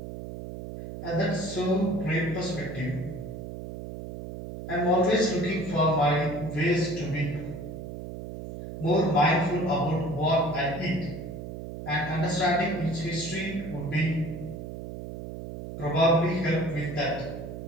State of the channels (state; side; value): noise; right; hum, 9 dB below the sound